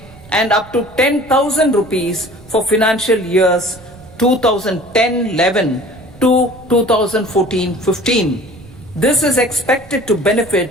and up to 10,000 rupees for financial years 2010-11 to 2014-15. This is expected to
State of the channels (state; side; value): noise; right; rumble, 21 dB below the sound